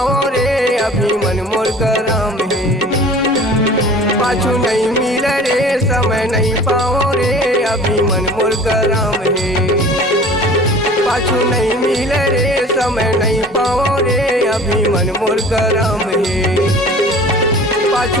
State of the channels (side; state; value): both; normal; correlation 0.44